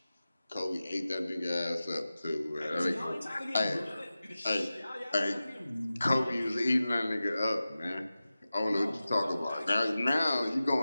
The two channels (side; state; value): both; inverted; correlation -0.95